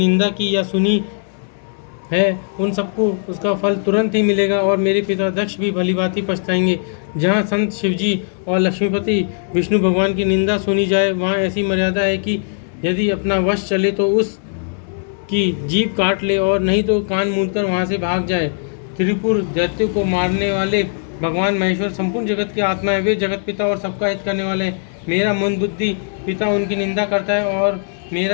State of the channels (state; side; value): silent; right; 67 dB below the other